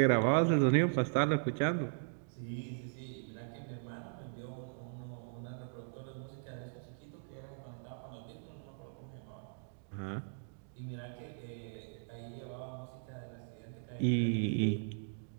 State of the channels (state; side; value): silent; left; digital silence